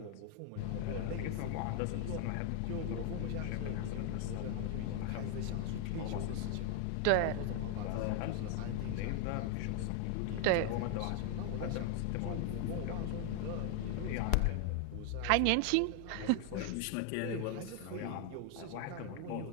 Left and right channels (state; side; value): different; both; correlation 0.00